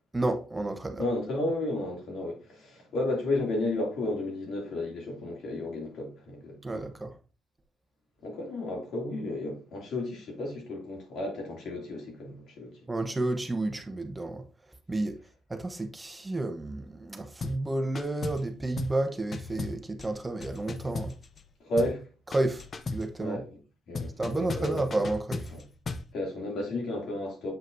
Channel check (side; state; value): both; normal; correlation 0.82